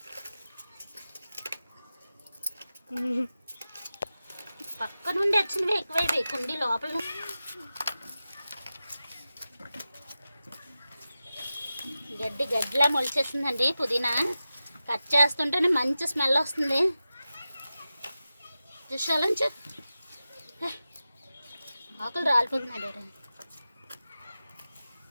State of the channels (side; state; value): both; inverted; correlation -0.93